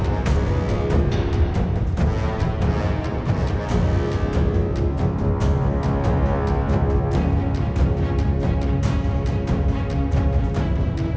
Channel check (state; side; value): identical; both; correlation 1.00